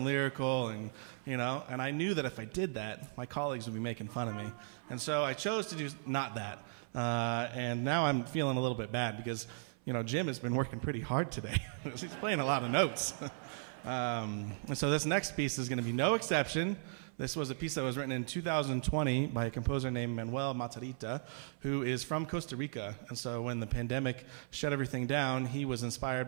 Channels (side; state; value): left; silent; 53 dB below the other